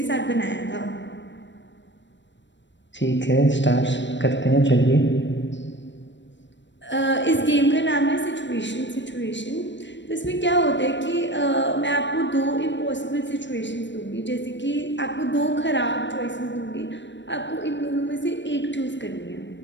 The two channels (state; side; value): late; right; 0.53 ms